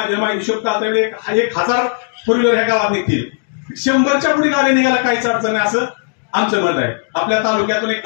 हिशोब काढताना 1000 फोर व्हीलर ह्या गावात निघतील, 100च्या पुढे गाड्या निघायला काहीच अडचण नाही असं आमचं मत आहे। आपल्या तालुक्यातून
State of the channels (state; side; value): silent; right; 58 dB below the other